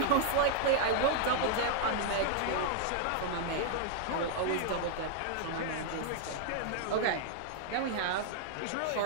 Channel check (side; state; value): both; different; correlation -0.01